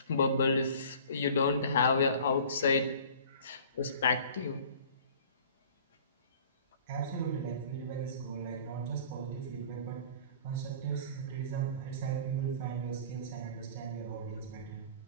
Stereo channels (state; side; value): inverted; both; correlation -0.46